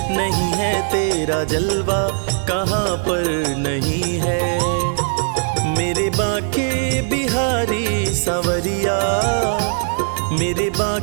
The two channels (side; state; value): left; silent; digital silence